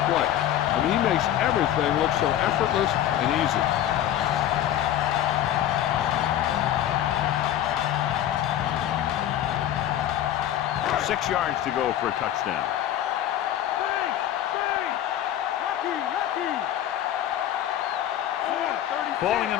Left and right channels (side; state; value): right; quieter; 11.6 dB